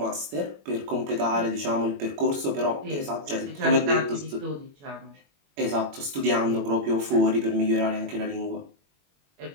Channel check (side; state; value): left; late; 21 ms